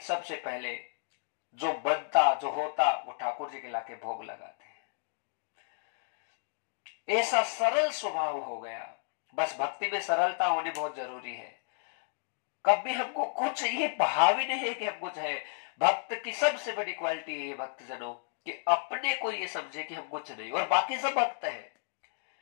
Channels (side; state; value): right; silent; digital silence